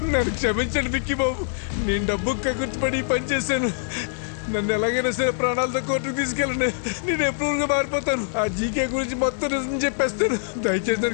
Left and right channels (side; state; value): right; silent; digital silence